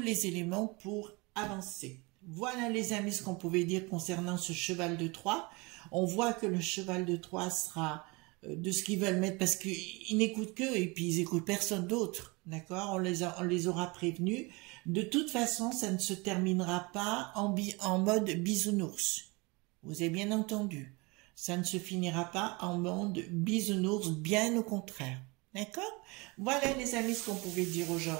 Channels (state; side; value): quieter; left; 26.4 dB